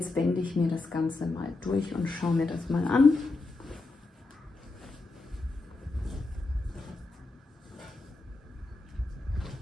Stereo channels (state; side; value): quieter; right; 3.3 dB